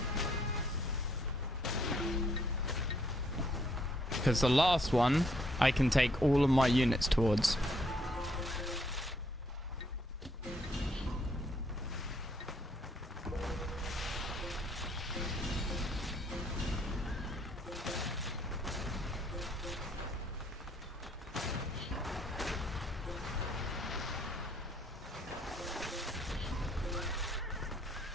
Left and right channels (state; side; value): normal; both; correlation 0.68